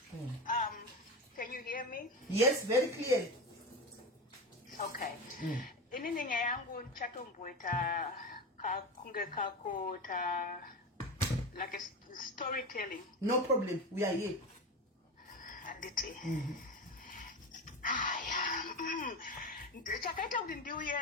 Can you hear me? Yes, very clearly. Okay. Inini nyaya yangu nchatomboita kunge kako ta like a storytelling. No problem, we are here. Anditi. Chakaita kuti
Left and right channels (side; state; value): both; normal; correlation 0.22